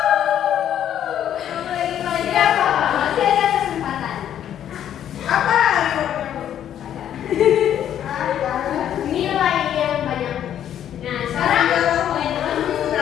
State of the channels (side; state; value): right; quieter; 10.3 dB